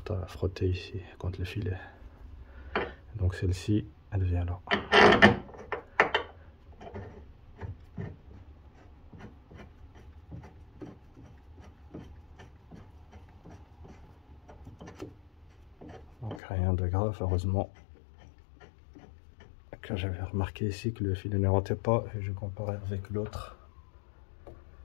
frotter ici contre le filet. Donc celle-ci, elle vient là. Donc rien de grave, heureusement que j'avais remarqué ici que le filet ne rentrait pas et je comparais avec l'autre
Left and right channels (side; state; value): right; drops out; at 16.4 s